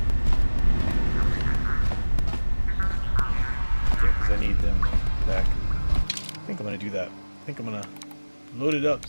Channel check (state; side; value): inverted; both; correlation -1.00